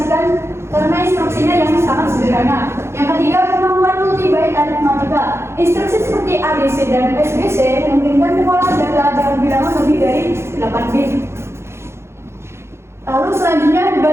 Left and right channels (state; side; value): late; left; 0.13 ms